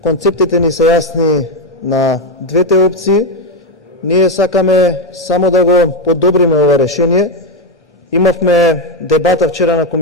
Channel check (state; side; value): normal; both; correlation 0.07